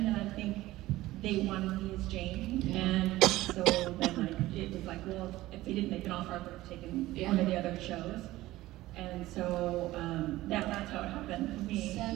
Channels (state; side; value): quieter; left; 17.0 dB